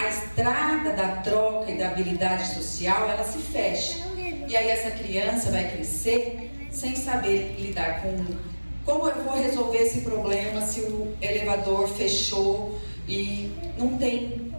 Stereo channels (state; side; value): inverted; both; correlation -1.00